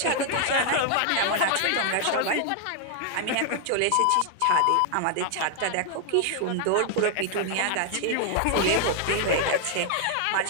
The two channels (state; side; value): different; both; correlation 0.00